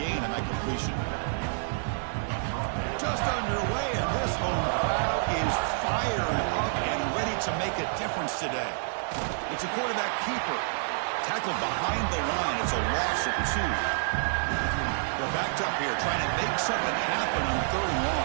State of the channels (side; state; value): left; silent; 59 dB below the other